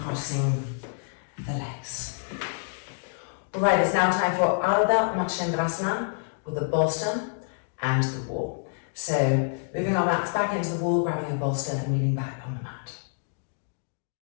the legs. Alright, it's now time for Ardha Matsyendrasana with a bolster and the wall. So moving our mats back into the wall, grabbing a bolster and leaning back on the mat.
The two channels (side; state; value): right; silent; digital silence